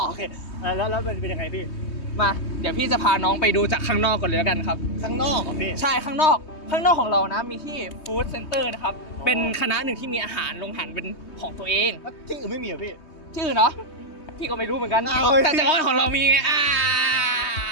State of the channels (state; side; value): late; right; 3.2 ms